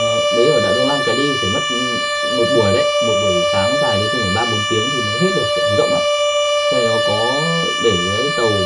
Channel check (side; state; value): both; identical; correlation 1.00